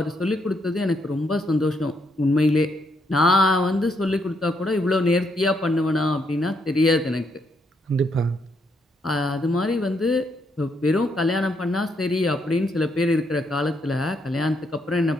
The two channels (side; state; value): both; normal; correlation 0.76